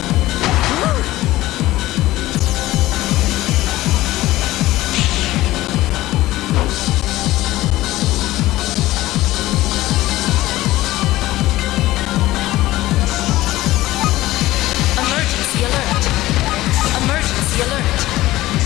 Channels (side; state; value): right; quieter; 16.8 dB